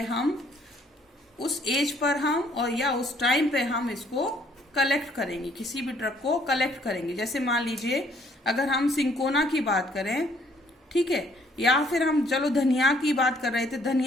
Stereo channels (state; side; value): normal; both; correlation 0.64